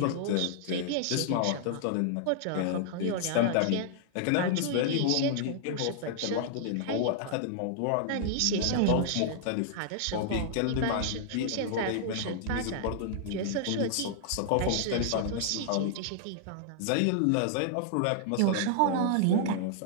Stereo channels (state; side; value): different; both; correlation -0.01